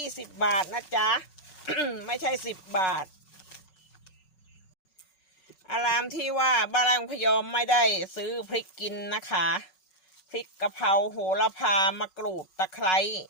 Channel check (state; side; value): late; right; 5.4 ms